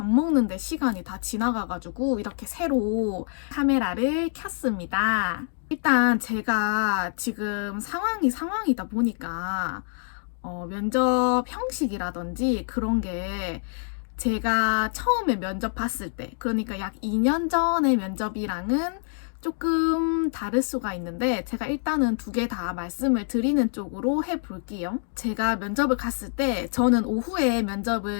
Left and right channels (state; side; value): silent; right; 59 dB below the other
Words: 먹는데 시간이 다 지나가가지고 이렇게 새로 카메라를 켰습니다. 일단 제가 지금 상황이다 보니까 면접 형식이라든지 그런 게 제가 처음에 면접 봤을 때, 그러니까 약 2년 전의 면접이랑은 조금 다를 수가 있는데 제가 일단은 2개 다 말씀을 드리는 쪽으로 해볼게요. 제가 면접을 갔을 때 저는 오후에